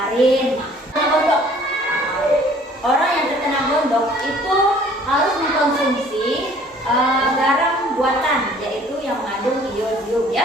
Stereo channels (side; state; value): both; normal; correlation 0.54